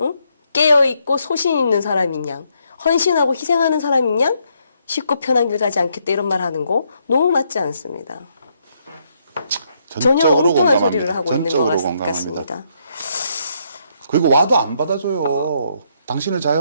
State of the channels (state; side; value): inverted; both; correlation -0.74